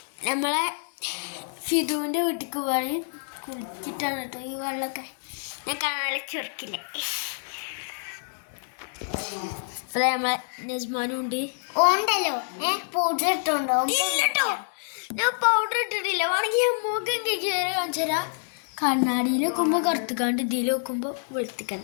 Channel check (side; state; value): right; silent; digital silence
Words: നമ്മളെ ഫിദുവിൻ്റെ വീട്ടിലേക്ക് പോവാണ്. കുളിച്ചിട്ടാണ് കേട്ടോ ഈ വെള്ളമൊക്കെ ഞാൻ കാണാൻ ചുരുക്കില്ല. അപ്പോൾ നമ്മളെ നസ്മാനും ഉണ്ട്. ഉണ്ടല്ലോ പൗഡർ ഇട്ടുണ്ടോ? ഇല്ലട്ടോ, ഞാൻ പൗഡർ ഇട്ടിട്ടില്ല. വേണമെങ്കിൽ ഞാൻ മുഖം കേറി കാണിച്ചു തരാം. കണ്ണാടിയിൽ വെക്കുമ്പോൾ കറുത്തുകാണ്ട് ഇതിൽ വെക്കുമ്പോൾ